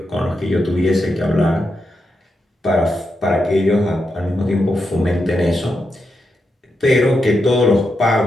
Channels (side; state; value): both; normal; correlation 0.85